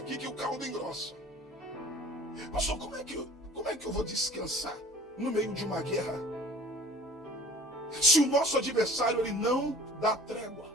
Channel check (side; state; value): both; normal; correlation 0.48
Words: que o caldo engrossa. Pastor, como é que eu vou descansar no meio de uma guerra? Se o nosso adversário, ele não dá trégua.